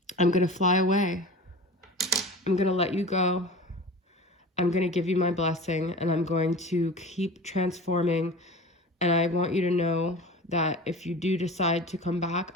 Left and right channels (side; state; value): both; normal; correlation 0.35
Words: I'm going to fly away. I'm going to let you go. I'm going to give you my blessing, and I'm going to keep transforming. And I want you to know that if you do decide to come back,